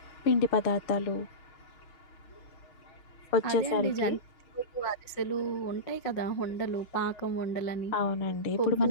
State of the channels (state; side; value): late; right; 5.6 ms